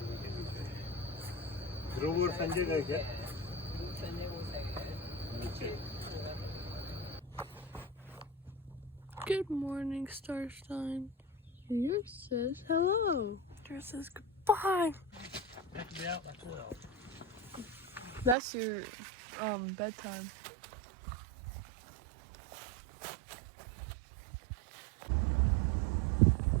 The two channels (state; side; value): drops out; left; at 18.4 s